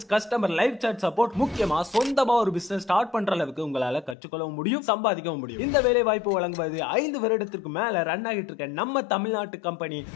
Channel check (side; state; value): right; drops out; at 4.2 s